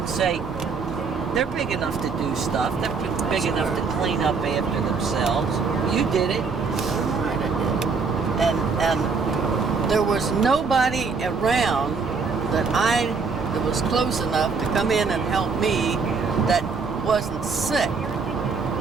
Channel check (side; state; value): left; quieter; 4.9 dB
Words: say, they're big enough to do stuff. They're big enough to clean up after themselves. You did it. Right, I did. And there was nobody around that was close enough to come in and help me that wasn't sick.